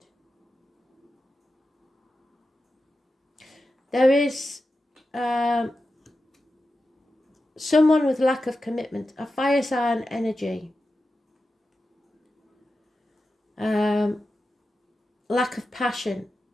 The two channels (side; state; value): both; normal; correlation 0.91